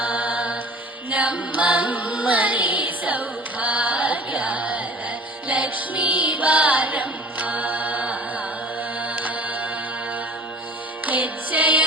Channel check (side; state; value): both; normal; correlation 0.42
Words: ನಮ್ಮಮ್ಮ ನೀ ಸೌಭಾಗ್ಯದ ಲಕ್ಷ್ಮೀ ಬಾರಮ್ಮ. ಹೆಜ್ಜೆಯ